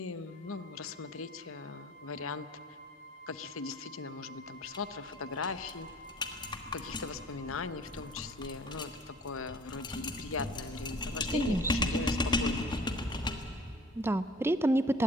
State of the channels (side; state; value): both; normal; correlation 0.49